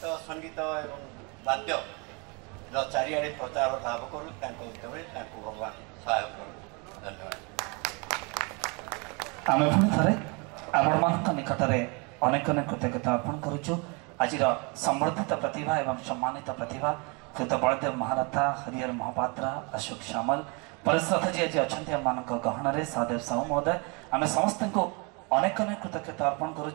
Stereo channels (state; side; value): quieter; left; 31.2 dB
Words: संगीत एवं वाद्य चारिआडे प्रचार लाभ करूँ भगवान सहायक करूँ। धन्यवाद। आम पुणी थे आपण मान निकट में अनेक अनेक कृतज्ञता अर्पण करुचु आज संवर्धित प्रतिभा एवं सम्मानित प्रतिभा कृत बलदेव महारथा हरिहर महापात्र अशोक श्यामल परिश्रथ जी आज अच्छा आम गहन में सहदेव साहू महोदय आम समस्त को अनेक अनेक कृतज्ञता अर्पण